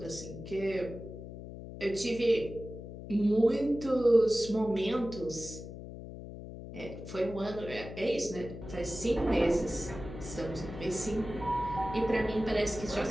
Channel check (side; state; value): left; noise; hum, 11 dB below the sound